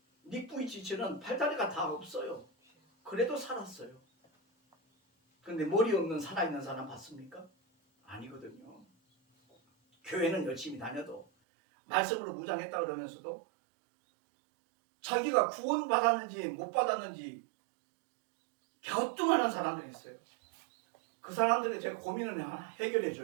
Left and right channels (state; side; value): drops out; left; at 11.2 s